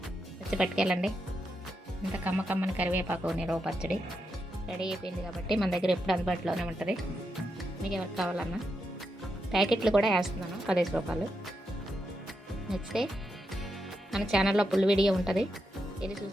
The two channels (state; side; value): normal; both; correlation 0.84